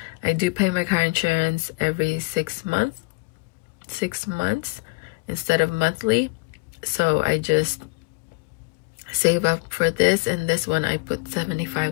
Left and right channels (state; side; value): quieter; right; 26.7 dB